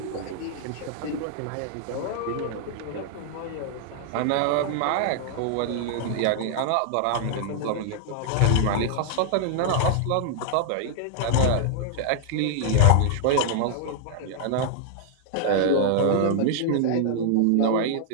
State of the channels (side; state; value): both; different; correlation -0.01